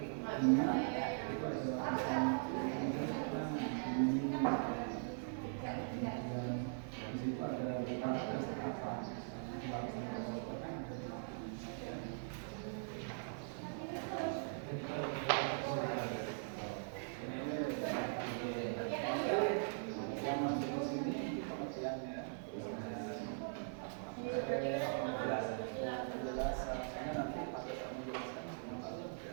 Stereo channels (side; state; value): left; silent; 50 dB below the other